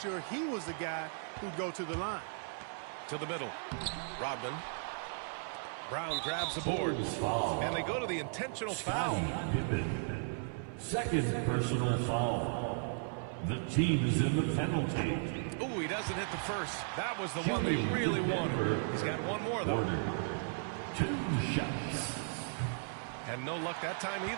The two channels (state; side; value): silent; left; 54 dB below the other